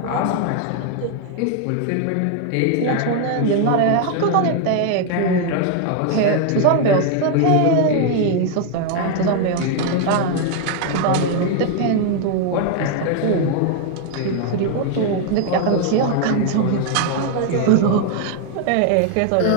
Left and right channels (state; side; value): different; both; correlation 0.00